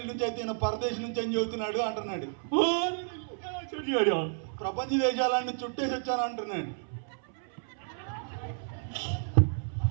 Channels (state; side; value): silent; left; 57 dB below the other